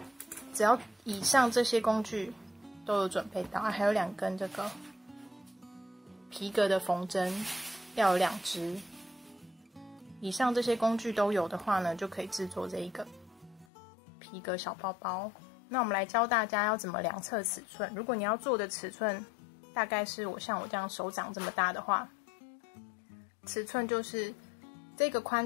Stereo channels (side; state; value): right; drops out; at 13.7 s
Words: 只要以上这些工具都有准备到，还有2根这个皮革的缝针，要有2支。以上这些工具都有的话呢，就可以制作这一个皮革小包包。那我们来教大家要怎么量测尺寸。如果你要做的尺寸大概是像我这样手掌这么大的话，尺寸就是这个